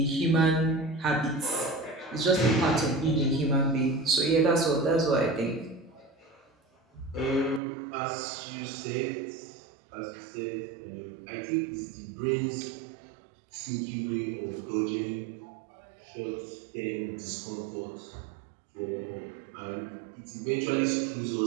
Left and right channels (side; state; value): left; drops out; at 7.6 s